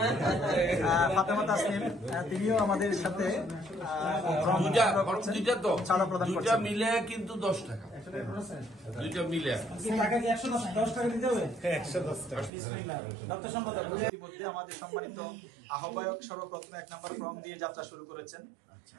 ফাতেমা তাসনিম, তিনিও আমাদের সাথে চাঁদা প্রদান করছেন। দুইটা মিলে কিন্তু 10 টাকা, দুইটা মিলে ইতিমধ্যে আমাদের সম্মানিত আহ্বায়ক সর্বপ্রথম 1 নম্বর ফর্ম দিয়ে যাত্রা শুরু করেছেন।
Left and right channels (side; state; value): left; drops out; at 12.5 s